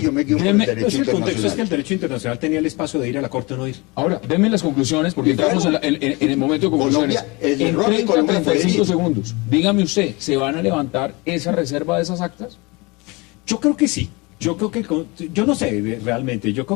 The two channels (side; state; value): right; quieter; 25.9 dB